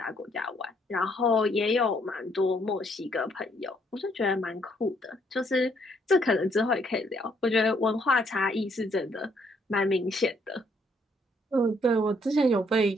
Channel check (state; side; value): normal; both; correlation 0.69